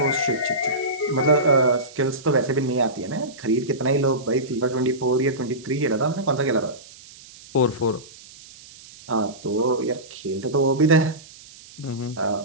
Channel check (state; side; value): noise; right; hiss, 20 dB below the sound